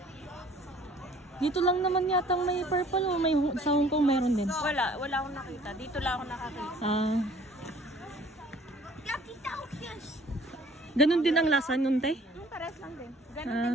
Dito lang naman yatang may purple o may sa Hong Kong meron din? Wala akong nakita. Dito lang ako nakakita. Ganun din ang lasa nun, te? Pares lang din. Ganun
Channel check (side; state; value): both; normal; correlation 0.54